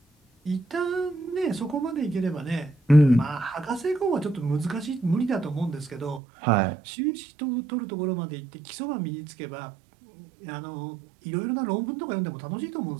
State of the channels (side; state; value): left; drops out; at 6.2 s